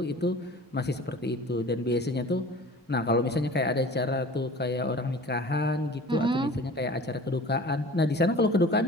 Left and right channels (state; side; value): normal; both; correlation 0.43